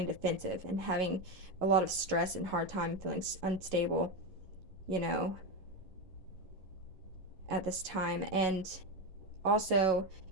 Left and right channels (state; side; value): late; left; 11 ms